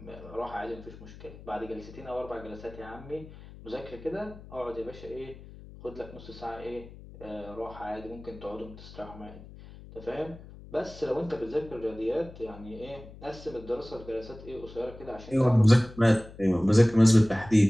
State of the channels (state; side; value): noise; left; hum, 17 dB below the sound